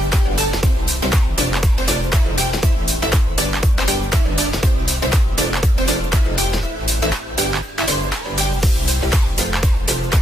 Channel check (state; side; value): normal; both; correlation 0.81